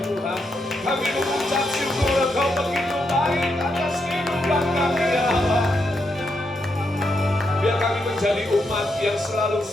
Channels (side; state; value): both; normal; correlation 0.81